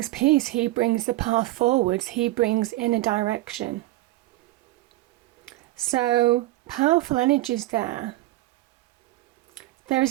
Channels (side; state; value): left; quieter; 17.9 dB